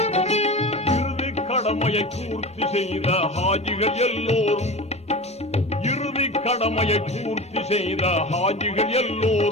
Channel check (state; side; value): normal; both; correlation 0.31